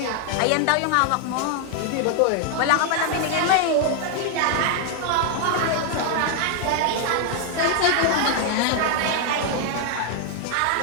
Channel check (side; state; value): both; different; correlation 0.00